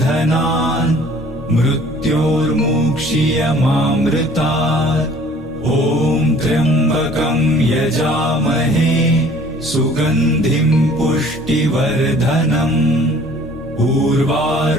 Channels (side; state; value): both; normal; correlation 0.53